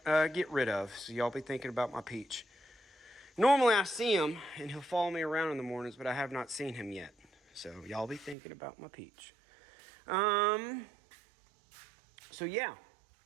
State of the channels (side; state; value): left; drops out; at 8.3 s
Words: get rid of. So y'all be thinking about my Peach. Normally I see him and he'll follow me around in the mornings, but I have not seen him yet. So y'all be thinking about my Peach. So yeah,